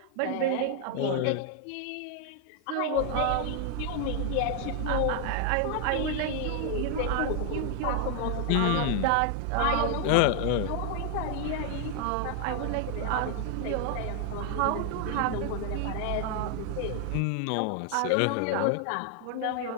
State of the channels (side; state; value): both; different; correlation 0.00